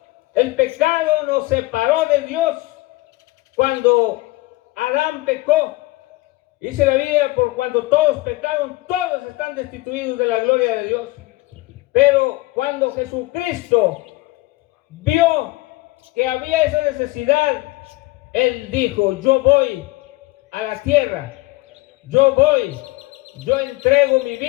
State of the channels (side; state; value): right; quieter; 20.6 dB